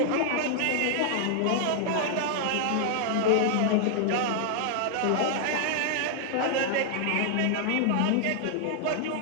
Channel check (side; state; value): both; different; correlation -0.01